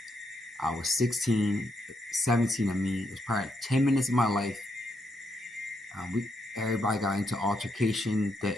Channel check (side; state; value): both; normal; correlation 0.78